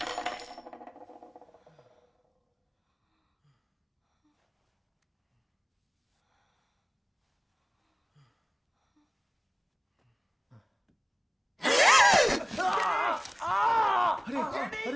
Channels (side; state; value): both; identical; correlation 1.00